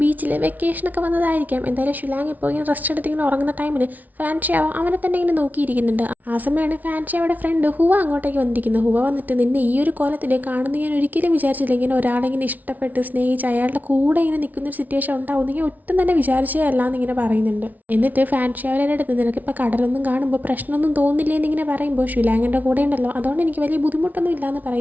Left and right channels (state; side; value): late; left; 0.076 ms